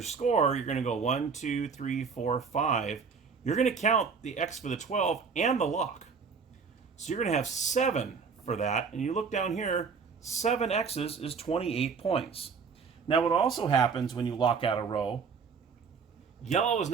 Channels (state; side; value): quieter; left; 5.6 dB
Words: score, you're going to go 1, 2, 3, 4, 5. You're going to count the X for the 12 and the lock. So you're going to have 7 for that. And you look down here, 7 X's is 28 points. Now what also happens when you lock out a row, yellow is